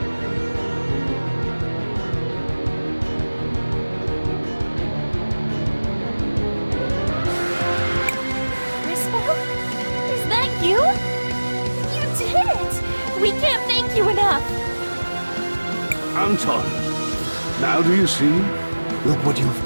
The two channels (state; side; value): inverted; both; correlation -1.00